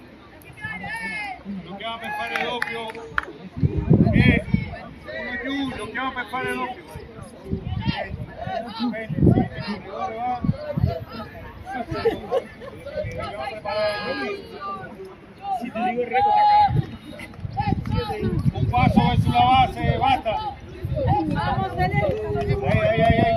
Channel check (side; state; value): both; identical; correlation 1.00